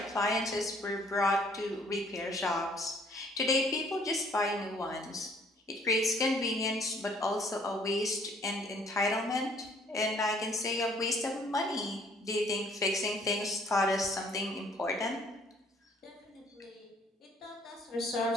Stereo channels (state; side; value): normal; both; correlation 0.60